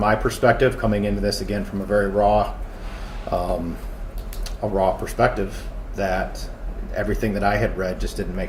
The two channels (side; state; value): both; identical; correlation 1.00